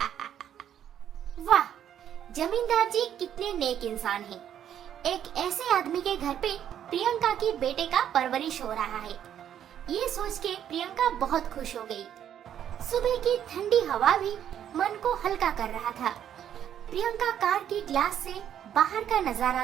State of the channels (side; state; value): left; quieter; 9.9 dB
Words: वाह, जमींदार जी कितने नेक इंसान हैं। एक ऐसे आदमी के घर पे प्रियंका की बेटे का परवरिश हो रहा है। ये सोच के प्रियंका बहुत खुश हो गई। सुबह की ठंडी हवा भी मन को हल्का कर रहा था। प्रियंका कार के ग्लास से बाहर का